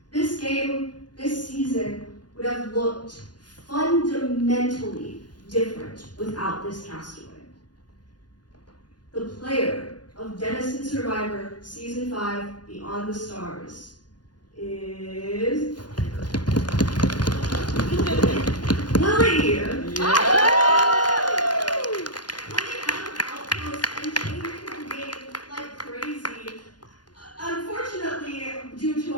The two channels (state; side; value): late; right; 0.70 ms